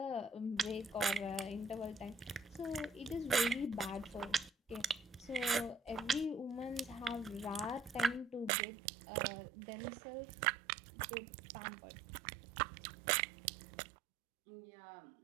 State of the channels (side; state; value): left; drops out; at 8.5 s